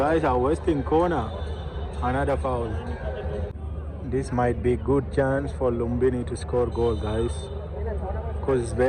are wasting corner. Another foul. This might be good chance for Lumbini to score goal, guys. Because it's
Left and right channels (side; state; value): both; identical; correlation 1.00